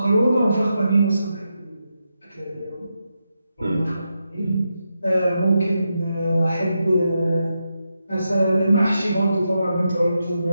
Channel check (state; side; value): inverted; both; correlation -0.86